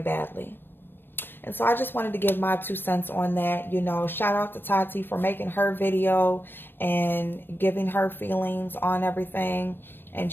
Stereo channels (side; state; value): right; late; 0.097 ms